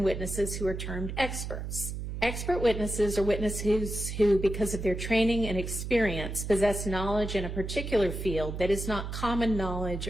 witnesses who are termed experts. Expert witnesses are witnesses who, because of their training and experience, possess knowledge in a particular field that is not common knowledge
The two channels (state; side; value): noise; right; hum, 6 dB below the sound